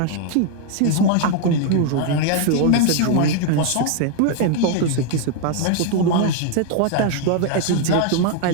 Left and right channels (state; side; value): different; both; correlation 0.00